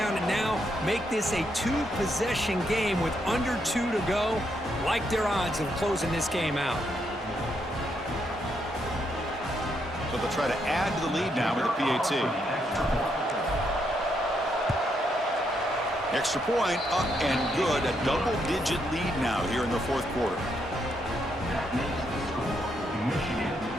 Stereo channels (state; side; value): normal; both; correlation 0.78